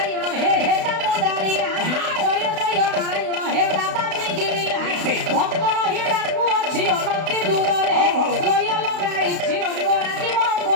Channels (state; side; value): late; left; 32 ms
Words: হে হেজামদারিয়া জয় জয় নারায়ণ হে দাবাগ্নি গিরিয়া ভক্ত রহি ডাকু অছি অনতি দূରରେ জয় লগাইছি রঙ্গ রাজীব